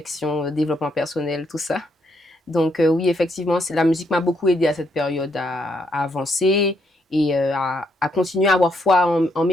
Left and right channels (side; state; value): both; normal; correlation 0.75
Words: développement personnel, tout ça. Donc oui, effectivement, la musique m'a beaucoup aidé à cette période à avancer et à continuer à avoir foi en